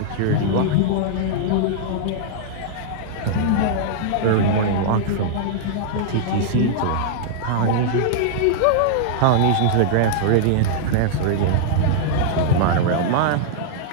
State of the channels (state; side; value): different; both; correlation -0.01